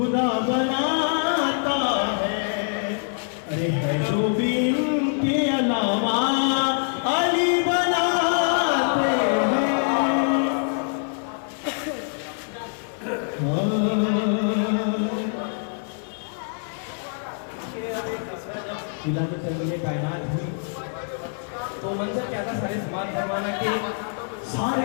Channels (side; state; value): right; silent; 62 dB below the other